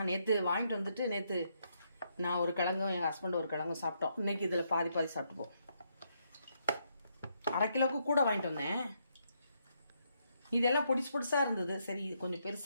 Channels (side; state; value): both; inverted; correlation -0.77